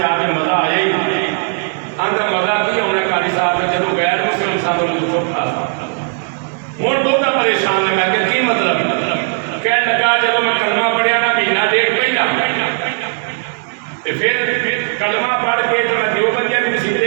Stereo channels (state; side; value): silent; left; 61 dB below the other